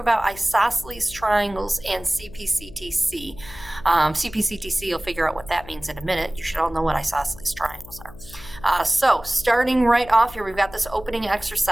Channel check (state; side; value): noise; left; hum, 18 dB below the sound